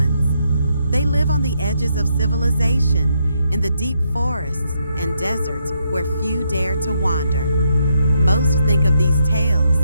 They live on the edges of civilization, in the deep forests and deserts where few dare to wander. Most think of these tales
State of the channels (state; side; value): inverted; both; correlation -0.77